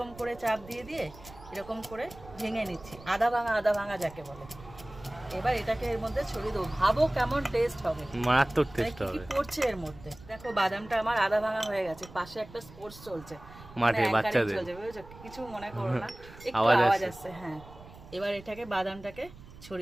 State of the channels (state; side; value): noise; right; rumble, 19 dB below the sound